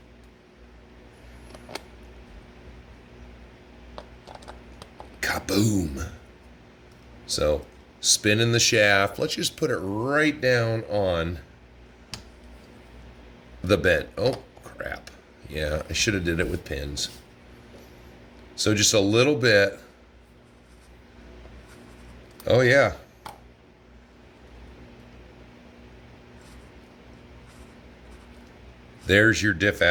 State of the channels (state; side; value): identical; both; correlation 1.00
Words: kaboom. So spinning the shaft. Let's just put it right down on the bent. Oh, crap. Yeah, I should have did it with pins. So just a little bit. Oh, yeah. There's your diff